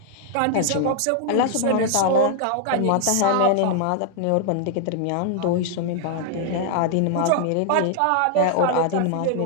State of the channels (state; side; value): different; both; correlation 0.00